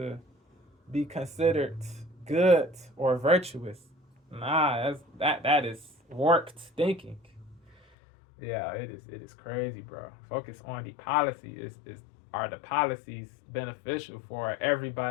be considered good or virtuous. Nah, that is warped thinking. Yeah, it is crazy, bro. Focus on the policy. Are the policies beneficial for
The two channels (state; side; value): drops out; right; at 7.8 s